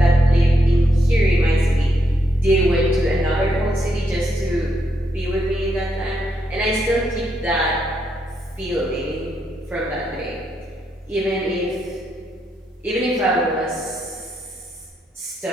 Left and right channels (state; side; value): normal; both; correlation 0.79